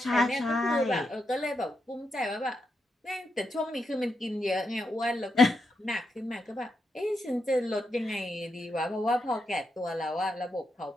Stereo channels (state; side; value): normal; both; correlation 0.84